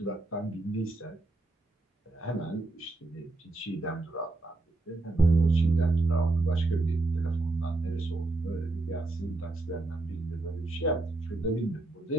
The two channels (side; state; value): left; quieter; 3.0 dB